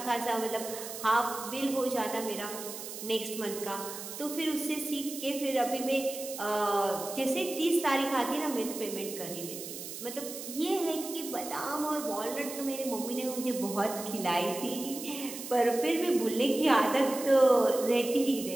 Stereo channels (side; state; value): right; noise; hiss, 10 dB below the sound